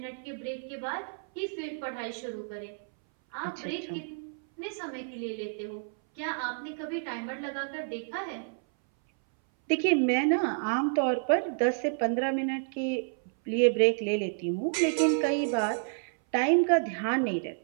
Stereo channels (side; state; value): left; silent; 58 dB below the other